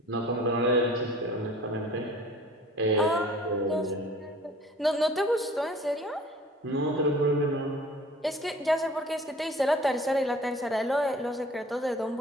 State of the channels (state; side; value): normal; both; correlation 0.48